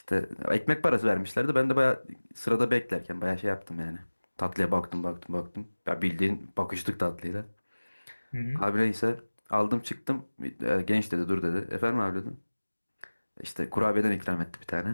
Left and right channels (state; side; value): inverted; both; correlation -1.00